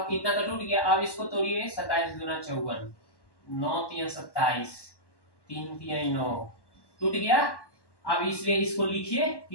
इतना तो टूट गया। अब इसको तोड़िए 27 गुना 54, 9 3 27, 3 3 9, टूट गया। अब इसलिए इसको लिखिए,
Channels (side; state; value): right; late; 1.1 ms